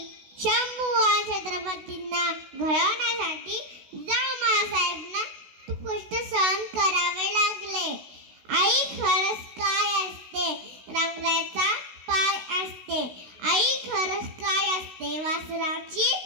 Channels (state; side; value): late; left; 16 ms